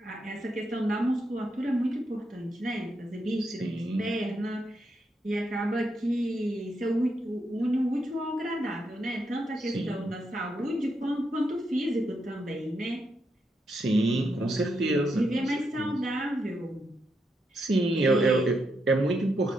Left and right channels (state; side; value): normal; both; correlation 0.81